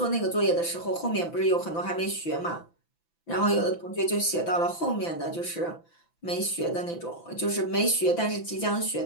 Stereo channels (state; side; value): late; right; 5.9 ms